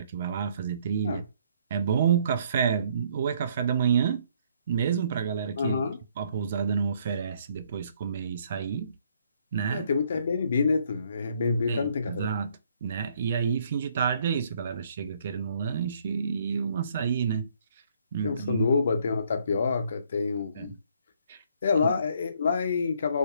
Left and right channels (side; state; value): both; inverted; correlation -0.66